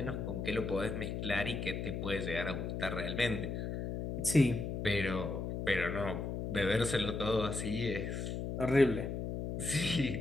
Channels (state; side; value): noise; left; hum, 3 dB below the sound